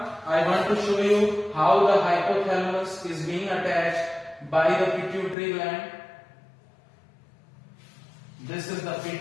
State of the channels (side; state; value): right; drops out; at 5.4 s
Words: I want to show you how the hypothalamus is being attached by the pituitary gland. This is the